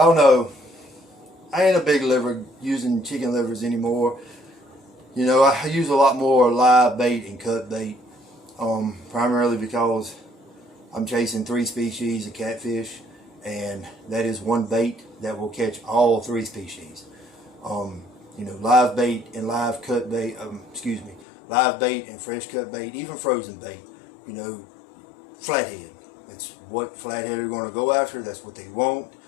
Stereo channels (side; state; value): right; drops out; at 21.2 s